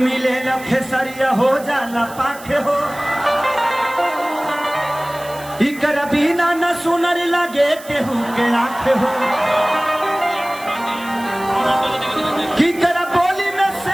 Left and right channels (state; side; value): noise; right; hiss, 18 dB below the sound